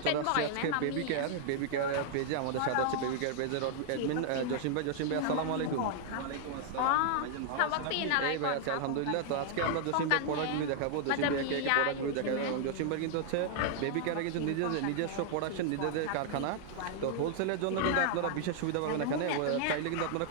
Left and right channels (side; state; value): both; different; correlation 0.00